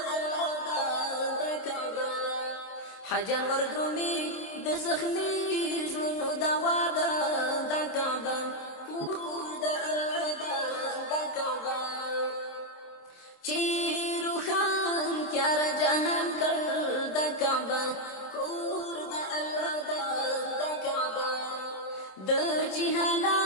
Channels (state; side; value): late; right; 27 ms